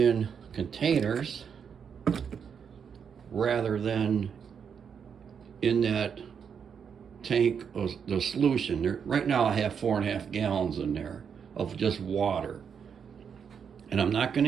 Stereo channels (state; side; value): quieter; left; 7.0 dB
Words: containers rather than in that tank of the solution. Right now I have 4.5 gallons in there of just water, and I'm not going